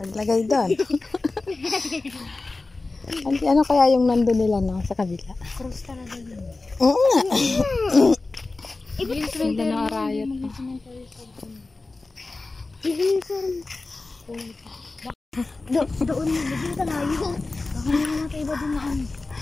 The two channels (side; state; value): right; quieter; 3.4 dB